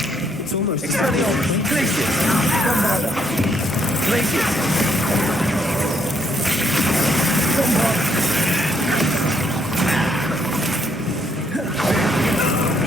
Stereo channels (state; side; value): normal; both; correlation 0.72